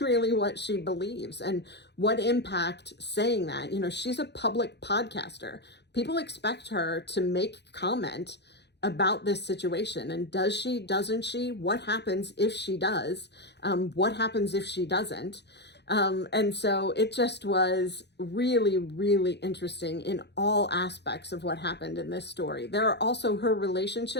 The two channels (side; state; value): right; late; 0.50 ms